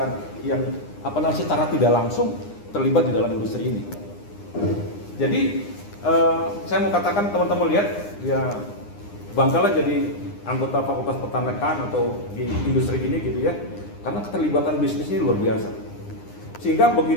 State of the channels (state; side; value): late; right; 9.8 ms